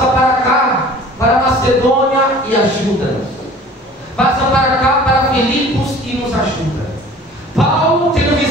para cá, para Macedônia e ajuda-nos. Passa para cá, para Filipos e nos ajuda. Paulo, tendo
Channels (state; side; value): normal; both; correlation 0.46